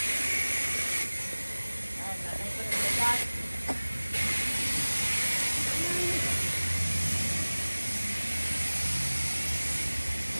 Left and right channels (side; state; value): both; inverted; correlation -1.00